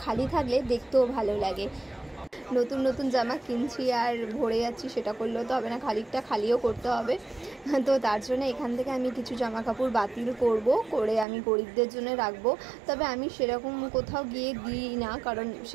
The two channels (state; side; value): drops out; left; at 11.2 s